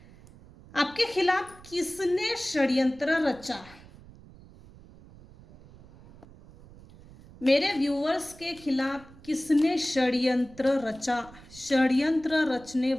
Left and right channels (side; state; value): right; noise; rumble, 21 dB below the sound